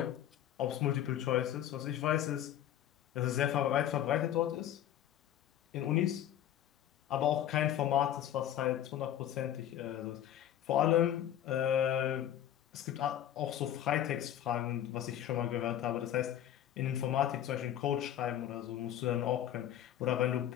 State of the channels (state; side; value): quieter; right; 11.3 dB